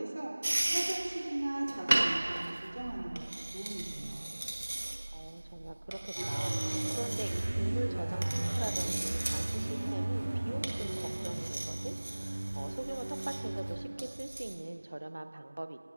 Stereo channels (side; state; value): both; inverted; correlation -1.00